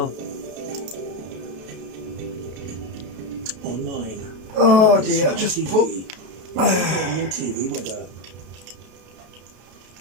Online. Oh dear, just put. TV weather.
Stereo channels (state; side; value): late; left; 32 ms